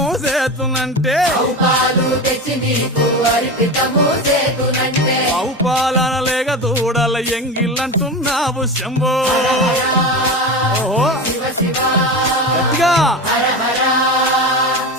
చేతునంటే పాలు తెచ్చి నీకు అర్పితము చేతునంటే ఆవు పాలన లేక దూడల ఎంగిలంటున్నావు శంభో ఓహో శివ శివ గట్టిగా హర హర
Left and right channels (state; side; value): normal; both; correlation 0.24